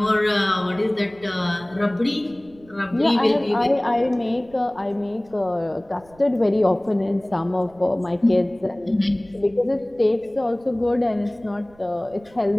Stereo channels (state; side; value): noise; right; rumble, 27 dB below the sound